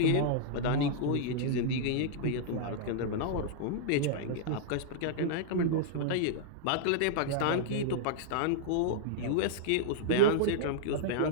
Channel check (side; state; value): both; different; correlation -0.02